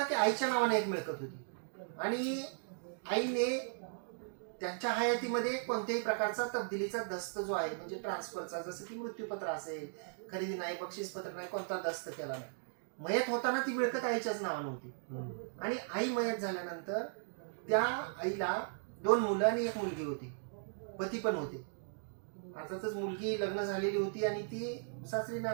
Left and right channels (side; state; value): left; silent; digital silence